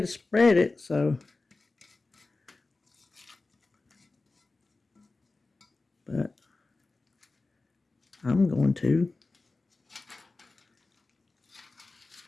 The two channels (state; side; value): quieter; right; 3.5 dB